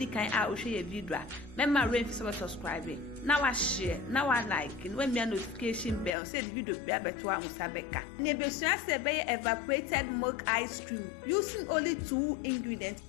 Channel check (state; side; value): drops out; right; at 6.1 s